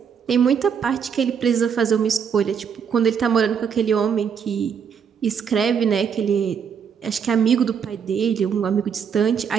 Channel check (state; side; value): quieter; left; 7.1 dB